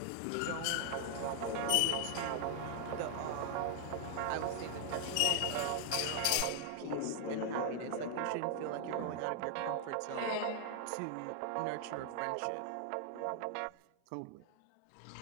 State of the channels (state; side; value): different; both; correlation 0.00